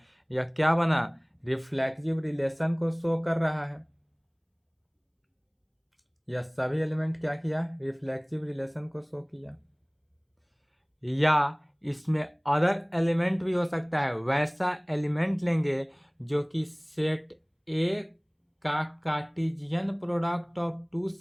यह क्या बना, रिफ्लेक्सिव रिलेशन को शो कर रहा है। यह सभी एलिमेंट क्या किया, रिफ्लेक्सिव रिलेशन को शो किया। या इसमें अदर एलिमेंट भी हो सकता है, वैसा एलिमेंट लेंगे जो कि सेट ए का कार्टेशियन प्रोडक्ट ऑफ 2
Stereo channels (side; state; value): both; identical; correlation 1.00